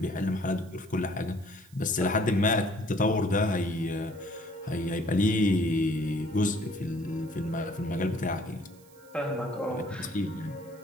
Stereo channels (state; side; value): noise; right; hiss, 27 dB below the sound